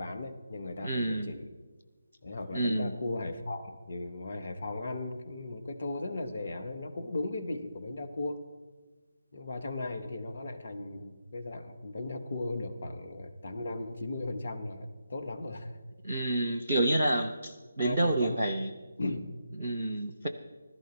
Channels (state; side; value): inverted; both; correlation -0.82